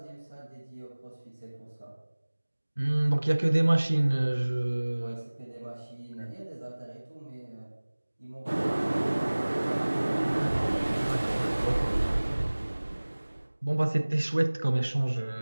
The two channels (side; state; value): both; inverted; correlation -1.00